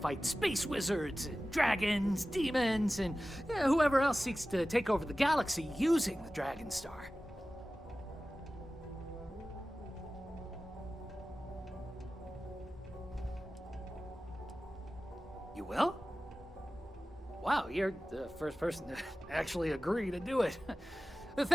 space wizards and dragons, demons, and whoever else seeks to take over the galaxy using the Dragonstar. You will? Wow, you're the first person to actually agree to do it.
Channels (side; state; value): both; normal; correlation 0.96